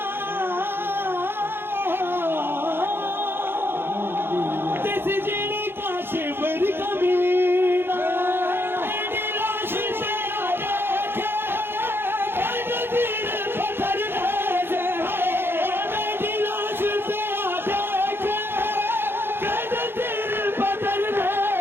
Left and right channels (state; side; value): late; left; 0.11 ms